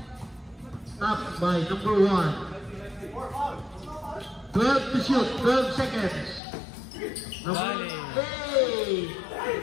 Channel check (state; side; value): drops out; right; at 6.4 s